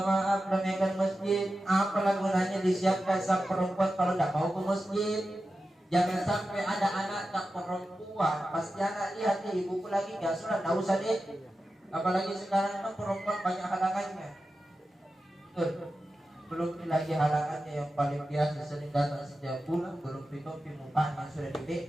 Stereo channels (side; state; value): both; normal; correlation 0.92